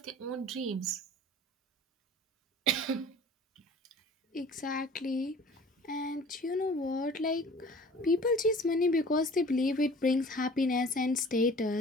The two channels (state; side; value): normal; both; correlation 0.46